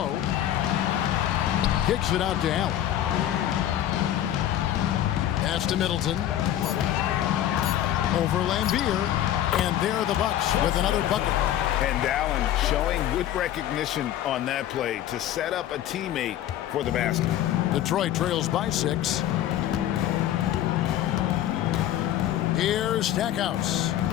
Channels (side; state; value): right; quieter; 12.1 dB